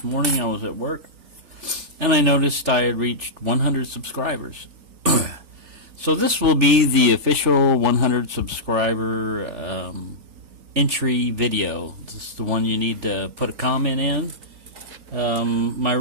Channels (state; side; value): late; left; 3.4 ms